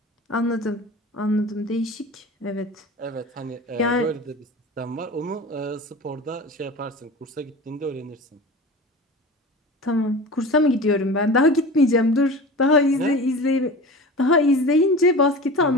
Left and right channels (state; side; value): normal; both; correlation 0.34